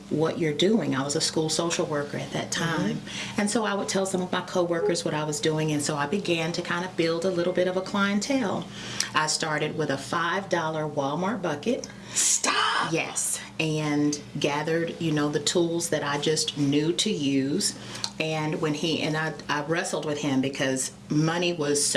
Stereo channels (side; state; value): both; identical; correlation 1.00